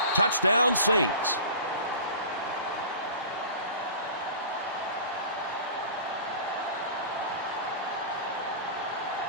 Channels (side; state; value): both; inverted; correlation -0.38